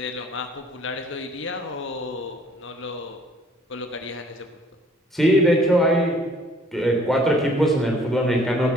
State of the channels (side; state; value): both; normal; correlation 0.58